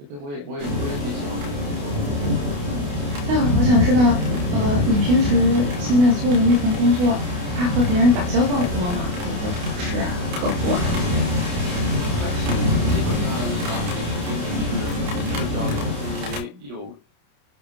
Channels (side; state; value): left; late; 28 ms